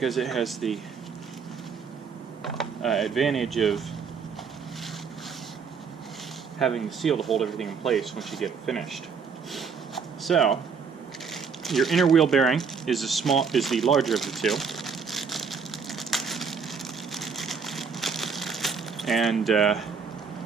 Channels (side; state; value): left; quieter; 5.9 dB